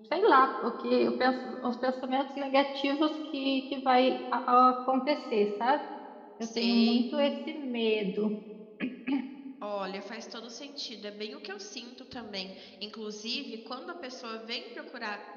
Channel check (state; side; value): identical; both; correlation 1.00